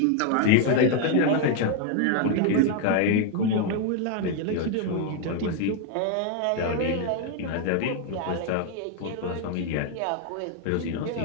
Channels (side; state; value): both; different; correlation 0.01